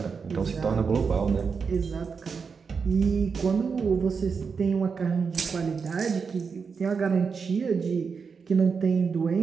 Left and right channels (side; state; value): left; quieter; 5.6 dB